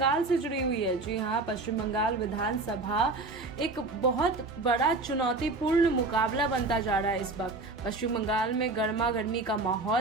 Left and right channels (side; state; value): left; quieter; 3.3 dB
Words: से जुड़ी हुई है। जी हाँ, पश्चिम बंगाल विधानसभा एक बहुत बड़ा चुनौतीपूर्ण मुकाबला बनता जा रहा है। इस वक्त पश्चिम बंगाल में गर्मा गर्मी का